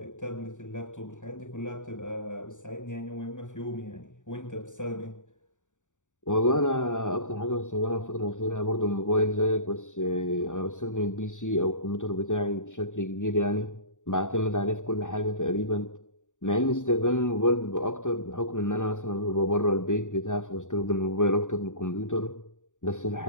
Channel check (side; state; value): right; late; 0.86 ms